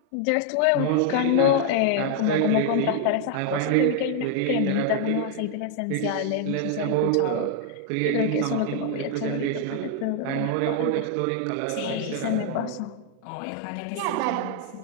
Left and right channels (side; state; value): both; different; correlation 0.00